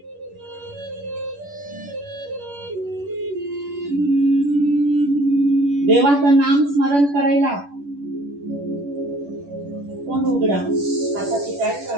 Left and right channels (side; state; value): left; late; 11 ms